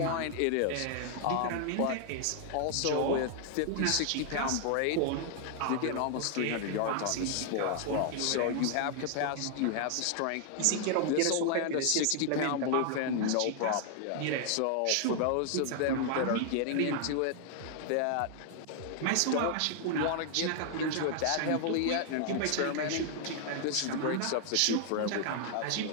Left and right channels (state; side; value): different; both; correlation 0.00